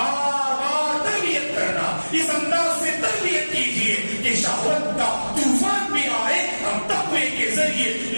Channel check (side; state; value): both; inverted; correlation -1.00